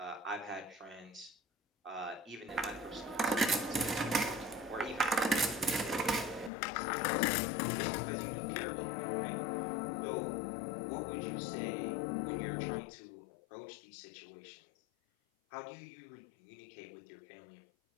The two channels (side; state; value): right; drops out; at 6.5 s